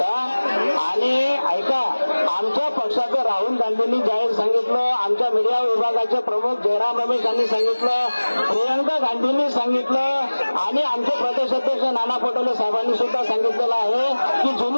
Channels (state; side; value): inverted; both; correlation -1.00